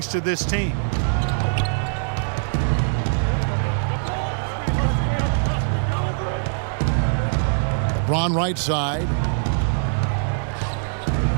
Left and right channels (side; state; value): left; silent; digital silence